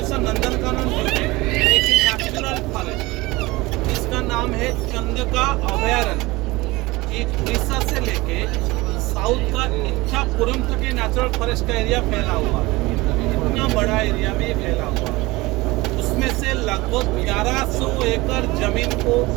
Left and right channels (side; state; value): left; quieter; 21.3 dB